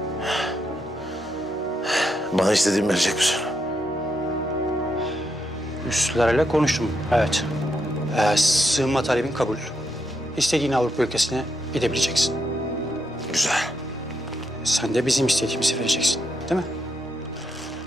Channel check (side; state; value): both; normal; correlation 0.80